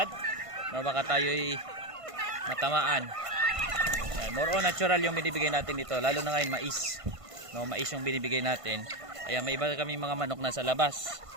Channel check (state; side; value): late; left; 1.5 ms